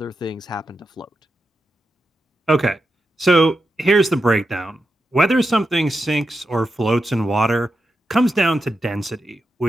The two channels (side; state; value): both; normal; correlation 0.88